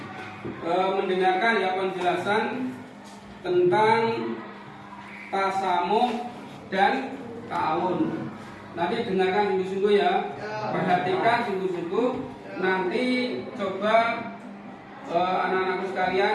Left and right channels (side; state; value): both; identical; correlation 1.00